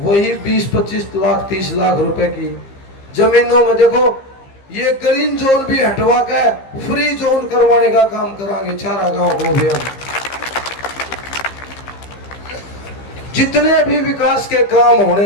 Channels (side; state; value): right; late; 15 ms